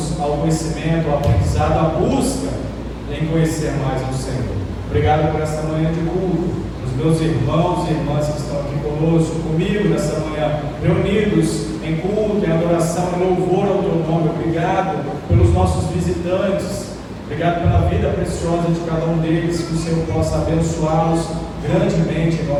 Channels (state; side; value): identical; both; correlation 1.00